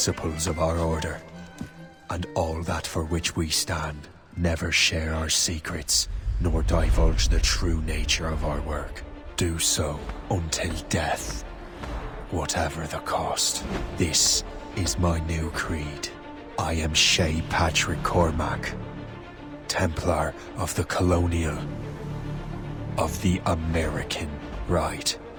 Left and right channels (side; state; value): both; identical; correlation 1.00